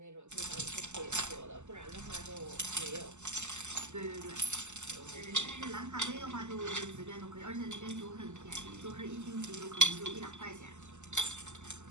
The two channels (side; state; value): left; late; 0.83 ms